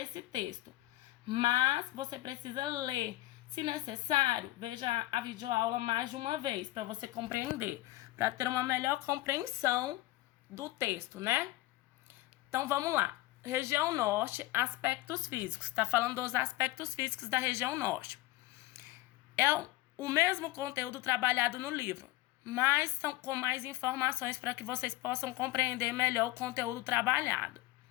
texto. Mas você precisa ler. Se necessário, veja a videoaula mais de uma vez para você compreender. Para ter uma melhor compreensão do texto, né? Então, vamos lá. Região Norte, aspectos físicos. Está falando dos aspectos físicos da região Norte. É o mesmo conteúdo trabalhado no livro, mas são com mais informações para que vocês possam compreender melhor o conteúdo trabalhado.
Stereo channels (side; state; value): right; quieter; 17.9 dB